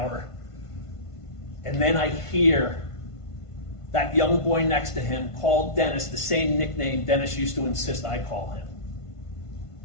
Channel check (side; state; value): right; late; 1.5 ms